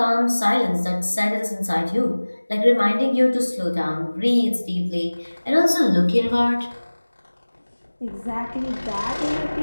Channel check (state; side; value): inverted; both; correlation -1.00